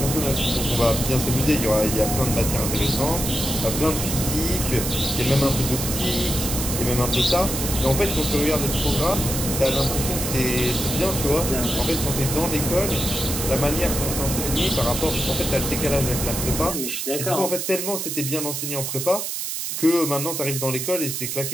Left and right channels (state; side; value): noise; right; hiss, 3 dB below the sound